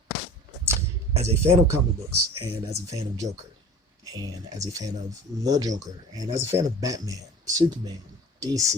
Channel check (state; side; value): normal; both; correlation 0.40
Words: as a fan of comic books, and as a fan of Joker, and as a fan of the Joker, and as a fan of Batman, Superman,